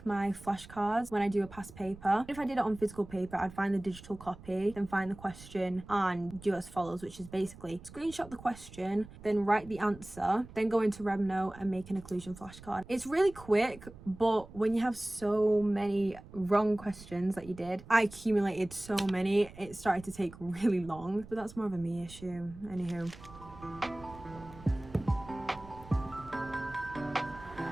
my flashcards when I do a past paper. If I did it on physical paper, I'd find the digital copy, then find the question and do as follows, which is basically screenshot the question, then write the answer, then go into Remnote and make an occlusion flashcard. It's really quick, but when you have so many wrong questions that you did, I accumulated so many, it started to take really long, but that's more of a me issue. Anywho.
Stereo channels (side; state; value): right; noise; rumble, 18 dB below the sound